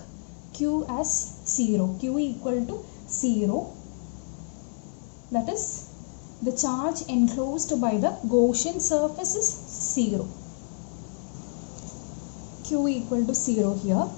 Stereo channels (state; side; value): silent; right; digital silence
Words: Q as 0. Q equal to 0. That is, the charge enclosed by the Gaussian surface is 0. Q equal to 0 here,